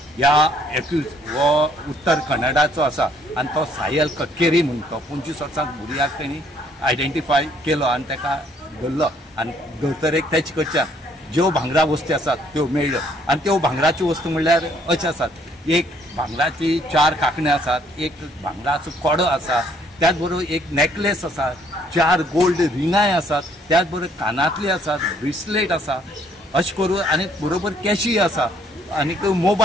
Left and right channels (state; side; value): normal; both; correlation 0.65